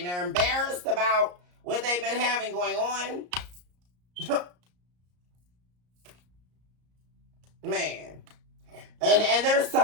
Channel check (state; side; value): late; left; 34 ms